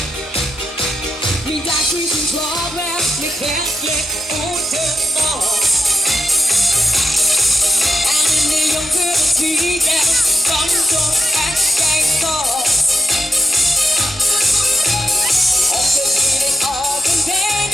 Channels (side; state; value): both; normal; correlation 0.90